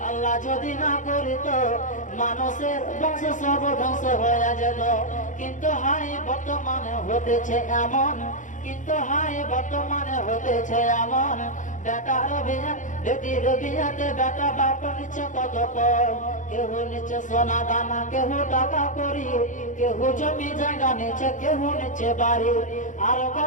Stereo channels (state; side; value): late; right; 0.37 ms